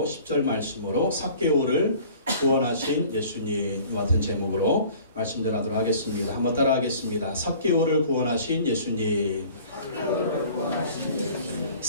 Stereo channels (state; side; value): inverted; both; correlation -0.49